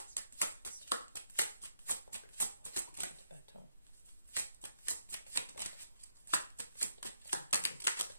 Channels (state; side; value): inverted; both; correlation -0.78